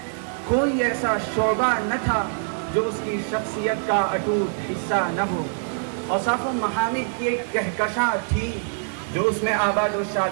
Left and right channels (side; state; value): left; silent; digital silence